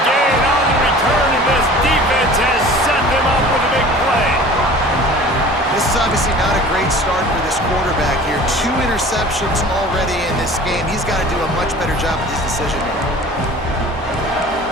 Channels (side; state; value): both; normal; correlation 0.43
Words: gain on the return, and this defense has set them up with a big play. This is obviously not a great start for this quarterback here. 2 interceptions already in this game. He's got to do a much better job with his decision making.